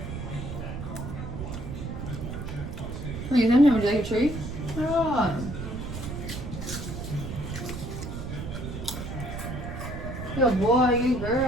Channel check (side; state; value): right; noise; rumble, 7 dB below the sound